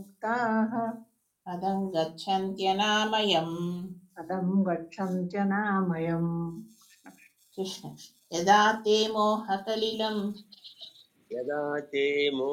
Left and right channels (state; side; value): identical; both; correlation 1.00